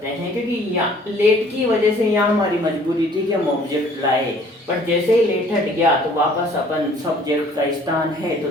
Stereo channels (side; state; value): both; normal; correlation 0.56